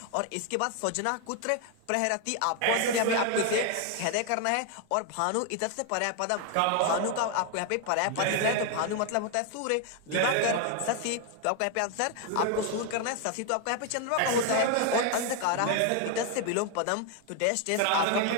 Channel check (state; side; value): different; both; correlation 0.00